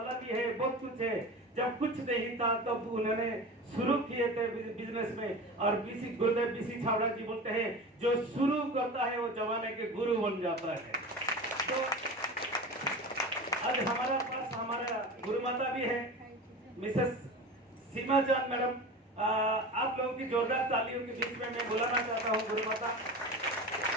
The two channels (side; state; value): both; normal; correlation 0.31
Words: भी है, बहुत कुछ है। जब कुछ नहीं था तब तो उन्होंने शुरू किए थे बिजनेस में। और गुरुदेव बीसी छावड़ा जी बोलते हैं, जो शुरू करता है वो जमाने के गुरु बन जाता है। तो आज हमारा पास हमारा गुरु माता भी है, मिसेस सीमा जान मैडम। आप लोगों की जोरदार तालियों के बीच में मैं बुलाना चाहता हूँ गुरु माता